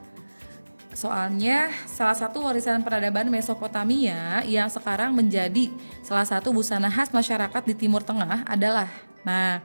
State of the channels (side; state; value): both; inverted; correlation -1.00